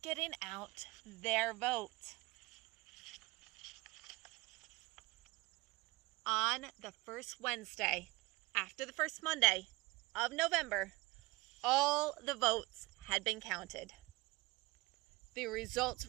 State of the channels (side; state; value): left; quieter; 22.5 dB